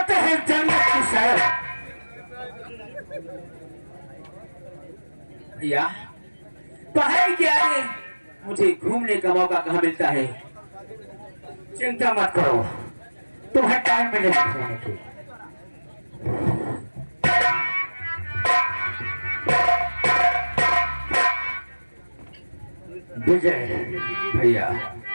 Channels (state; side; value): inverted; both; correlation -1.00